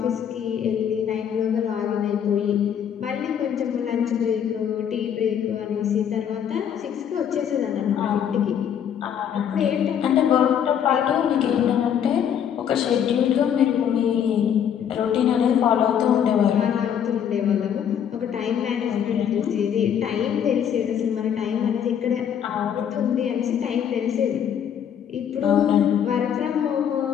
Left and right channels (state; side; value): quieter; right; 8.8 dB